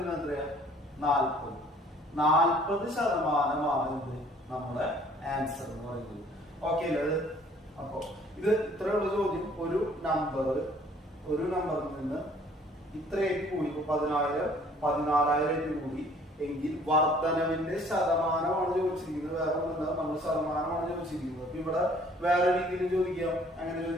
എത്രയാ, 40% ഇത് നമ്മുടെ ആൻസർ എന്ന് പറയുന്നത്. ഓക്കെ അല്ലേ? അപ്പൊ ഇത് ഇത്രയുള്ള ചോദ്യം. ഒരു നമ്പറിൽ നിന്ന് ഇത്രയായിട്ട് കൂടി, 10,000 14,000 കൂടി എങ്കിൽ വർധനവിന്റെ ശതമാനമാണ് ചോദിച്ചിരിക്കുന്നത്. വേറെ ഒന്നുമില്ല, നമ്മൾ ശതമാനമാണ് ചോദിച്ചിരിക്കുന്നത്. അപ്പൊ ഇവിടെ വേറെ രീതിയിൽ ചോദിക്കാം. അങ്ങനെ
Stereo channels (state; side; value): normal; both; correlation 0.56